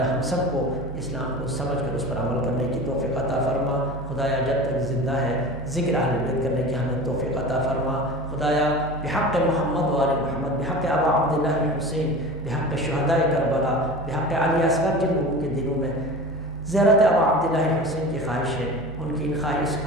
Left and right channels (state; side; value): normal; both; correlation 0.33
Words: ہم سب کو اسلام کو سمجھ کر اس پر عمل کرنے کی توفیق عطا فرما۔ خدایا جب تک زندہ ہے ذکر اہل بیت کرنے کی ہمیں توفیق عطا فرما۔ خدایا بحق محمد و آل محمد، بحق ابا عبداللہ الحسین، بحق شہداء کربلا، بحق علی اصغر، جن لوگوں کے دلوں میں زیارت ابا عبداللہ الحسین کی خواہش ہے ان کی ان